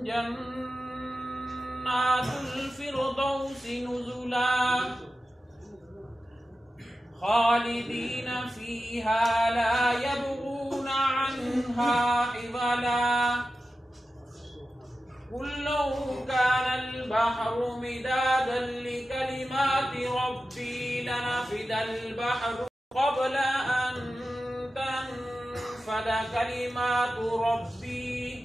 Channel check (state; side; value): normal; both; correlation 0.93